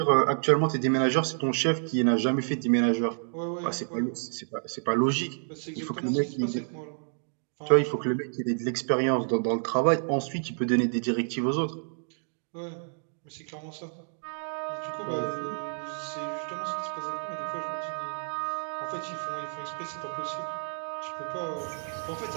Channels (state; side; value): silent; left; digital silence